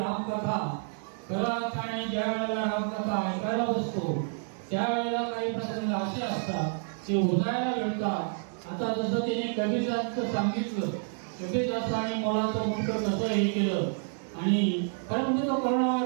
आणि ज्या वेळेला रामकथा ऐकायला बसतो त्यावेळेला काही प्रसंग असे असतात ते उजाळायला मिळतात। आता जसं त्याने कबीरदासचं सांगितलं, कबीरदासाने मोलाचं मुक्त कसं हे केलं आणि खरं म्हणजे तो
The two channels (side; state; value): left; silent; 58 dB below the other